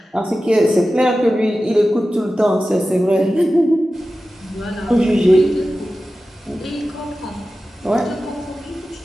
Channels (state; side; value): normal; both; correlation 0.94